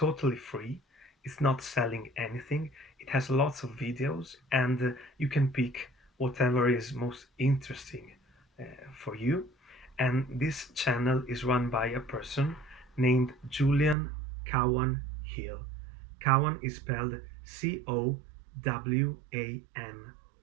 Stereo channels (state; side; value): drops out; left; at 14.0 s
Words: free, it's not selling anything, it has lots of videos, and you can pick whatever is most interesting uh, for you. And this channel is run by a person named Julian Cowan Hill. Cowan is spelled Cowan,